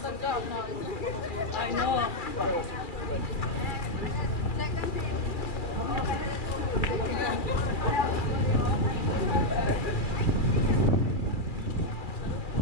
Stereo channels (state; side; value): late; right; 2.4 ms